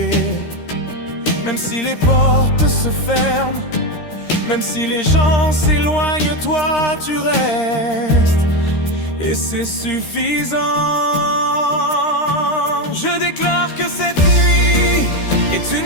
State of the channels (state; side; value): late; right; 13 ms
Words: Même si les portes se ferment, même si les gens s'éloignent, toi tu restes. Et c'est suffisant. Je déclare que cette nuit est